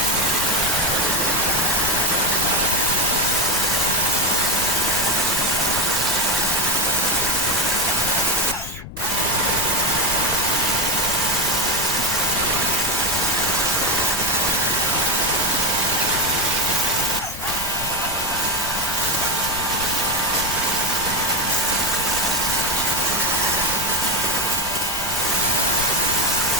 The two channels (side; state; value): left; noise; rumble, 13 dB below the sound